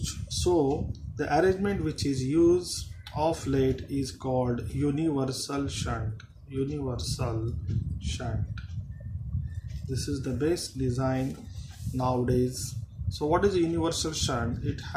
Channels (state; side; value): identical; both; correlation 1.00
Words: So the arrangement which is used of late is called universal shunt. Universal shunt. This is the best design nowadays. So what is a universal shunt? It